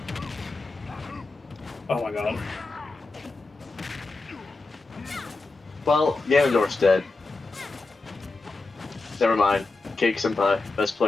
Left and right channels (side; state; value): right; quieter; 3.5 dB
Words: Oh my god. Well, Ganondorf's dead. Never mind. Cake Senpai, best